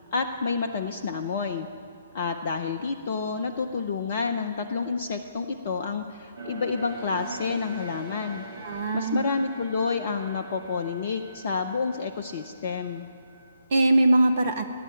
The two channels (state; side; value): inverted; both; correlation -0.75